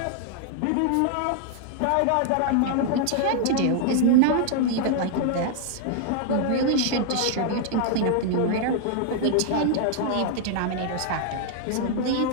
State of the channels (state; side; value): different; both; correlation 0.00